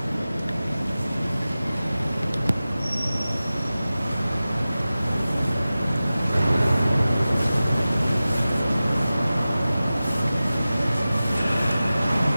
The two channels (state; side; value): inverted; both; correlation -0.96